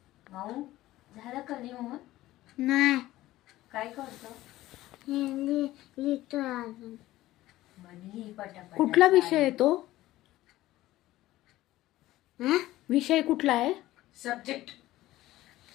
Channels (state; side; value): quieter; right; 16.1 dB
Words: झालं का लिहून? नाही काय करतो? लिहितो अजून. लिही पटापट. कुठला विषय आहे तो? हा? विषय कुठला आहे? सब्जेक्ट